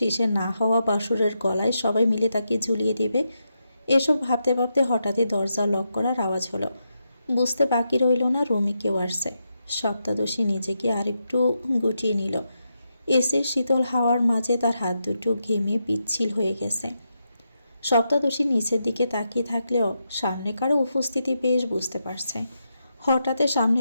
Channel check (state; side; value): inverted; both; correlation -0.84